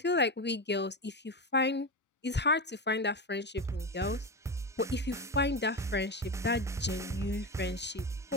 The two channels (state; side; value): normal; both; correlation 0.18